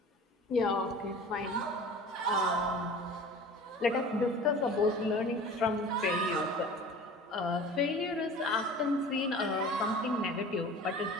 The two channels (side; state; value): both; normal; correlation 0.40